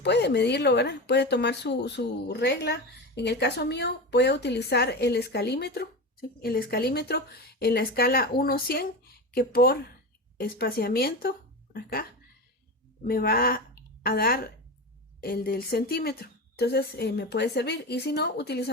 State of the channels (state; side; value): normal; both; correlation 0.24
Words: medirlo, ¿verdad? Puede tomar su regla. En el caso mío, voy a utilizar el escalímetro, ¿sí? El escalímetro en la escala 1-100, que por espaciamiento, acá, me va a dar el del centímetro. Entonces, me puede servir. Y si no,